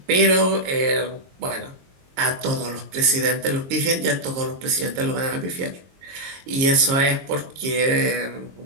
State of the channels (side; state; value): left; late; 22 ms